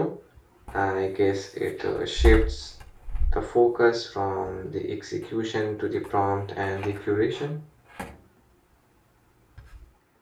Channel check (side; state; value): both; identical; correlation 1.00